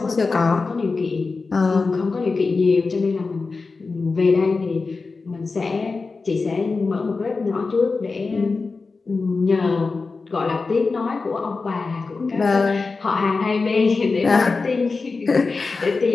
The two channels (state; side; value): quieter; right; 4.1 dB